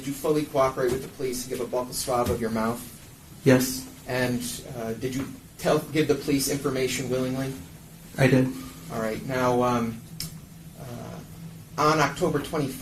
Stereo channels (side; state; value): both; identical; correlation 1.00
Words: you fully cooperate with the police and give a buccal swab of your mouth? Yes, And did you give the police information willingly? I did. All right. Now, on October